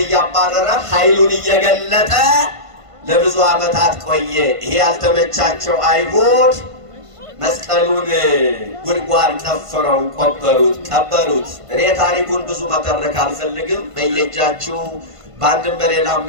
እያባረረ ኃይሉን እየገለጠ ለብዙ ዓመታት ቆየ። ይሄ ያልተመቻቸው አይሁድ መስቀሉን ጉድጓድ ቆፍረው ቀበሩት። እኔ ታሪኩን ብዙ መተረክ አልፈልግም። በየእጃችሁ በአንድም በሌላም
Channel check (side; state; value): left; late; 1.5 ms